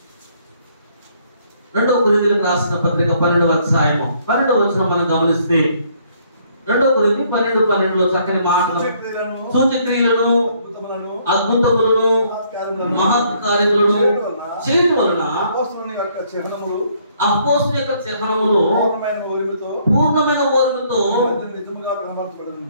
2వ కొరింథీయులకు రాసిన పత్రిక 12వ అధ్యాయము 12వ వచనం మనం గమనిస్తే 2వ కొరింథీ 12:12లో చక్కని మాటలు, సూచక్రియలను, అద్భుతములను, మహత్ కార్యములను చేయడం వలన అపోస్తలుని యొక్క చిహ్నములు పూర్ణమైన ఓర్మితో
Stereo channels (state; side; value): inverted; both; correlation -0.66